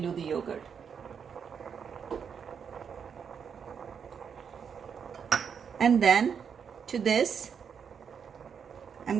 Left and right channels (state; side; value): quieter; left; 7.0 dB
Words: the yogurt. And then to this, I'm